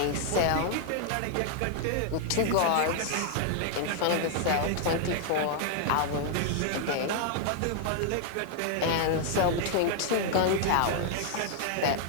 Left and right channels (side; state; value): both; different; correlation 0.00